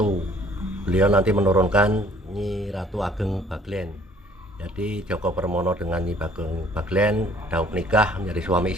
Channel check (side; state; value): both; normal; correlation 0.57